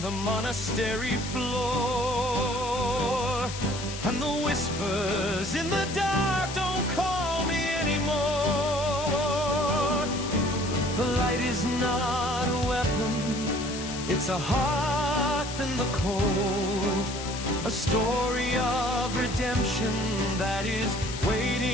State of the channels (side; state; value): left; noise; hiss, 9 dB below the sound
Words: the monastery floor, and the whispers in the dark don't call me anymore. The light is not a weapon, it's a hearth in the cold, a story of redemption that is